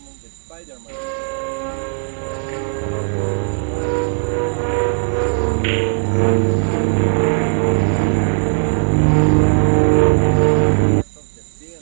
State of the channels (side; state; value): left; silent; 57 dB below the other